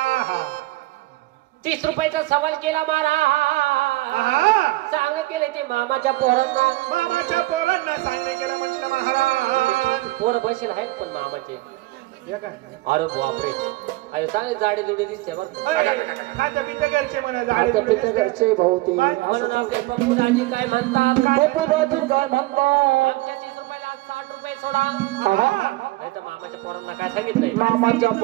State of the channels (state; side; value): quieter; left; 19.4 dB